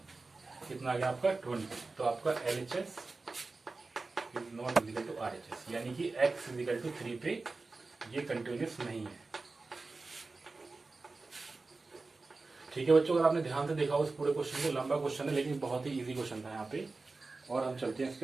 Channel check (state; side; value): quieter; left; 3.7 dB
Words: कितना आ गया आपका 20। तो आपका LHS is not is equal to RHS, यानी कि x इजिकल टू 3 पे ये कंटिन्यूस नहीं है। ठीक है बच्चों, अगर आपने ध्यान से देखा उस पूरे क्वेश्चन को, लंबा क्वेश्चन है लेकिन बहुत ही इजी क्वेश्चन था यहाँ पे। और हम चलते हैं,